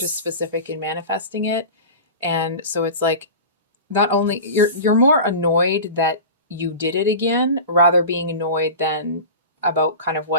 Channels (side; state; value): both; inverted; correlation -0.32